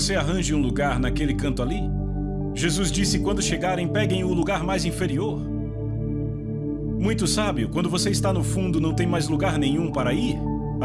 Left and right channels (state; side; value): identical; both; correlation 1.00